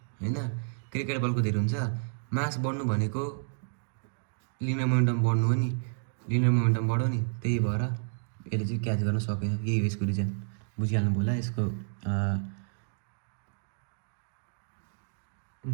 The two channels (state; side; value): silent; left; digital silence